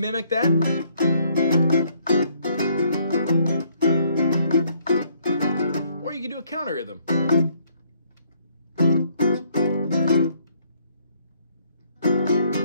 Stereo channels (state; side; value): inverted; both; correlation -0.66